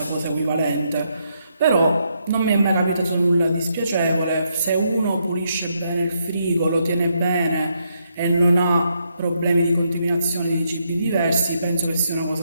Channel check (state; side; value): inverted; both; correlation -0.78